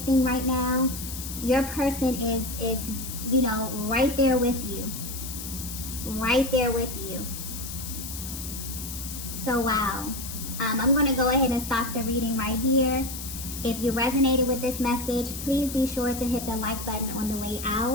right now, your person is you know, right there with you. Right there with you. So wow. I'm going to go ahead and stop the reading right here. If you resonated with this message, please be sure to hit the like button on the way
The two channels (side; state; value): left; noise; hiss, 8 dB below the sound